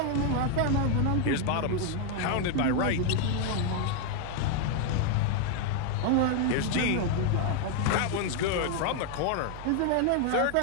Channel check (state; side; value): different; both; correlation 0.01